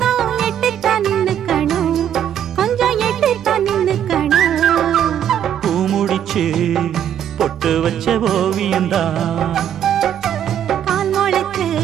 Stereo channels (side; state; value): left; quieter; 9.9 dB